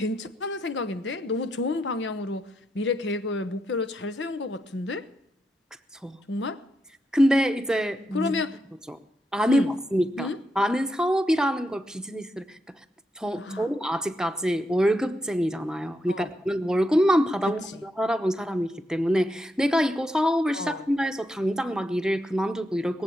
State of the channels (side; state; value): both; normal; correlation 0.82